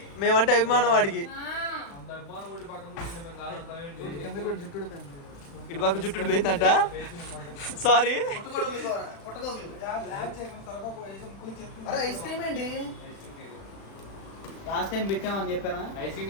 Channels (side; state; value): right; late; 36 ms